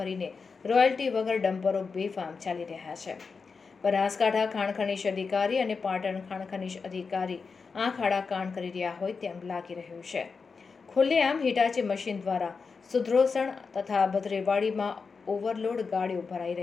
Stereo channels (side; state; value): right; quieter; 5.0 dB